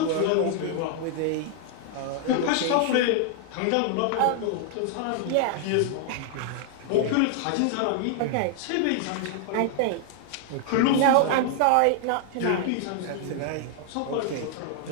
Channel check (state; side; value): different; both; correlation 0.00